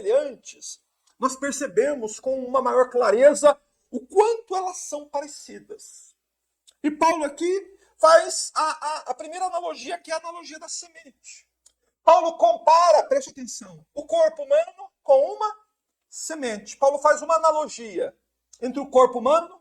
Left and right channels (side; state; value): both; identical; correlation 1.00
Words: nós percebemos com uma maior clareza o quanto elas são parecidas. E Paulo aqui faz a primeira analogia, que é a analogia da semente. Paulo compara, preste atenção, o corpo humano com uma semente. Paulo faz uma analogia entre o corpo humano